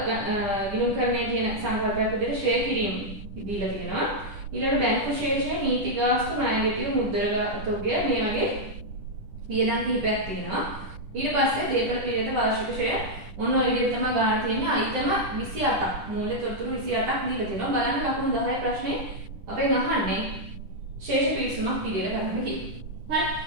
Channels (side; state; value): left; late; 10 ms